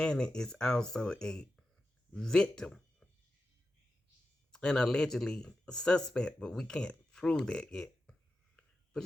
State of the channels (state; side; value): normal; both; correlation 0.91